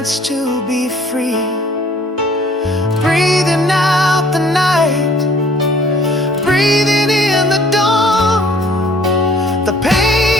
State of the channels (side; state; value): both; normal; correlation 0.57